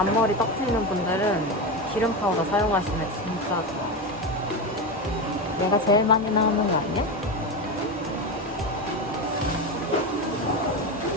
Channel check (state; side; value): normal; both; correlation 0.17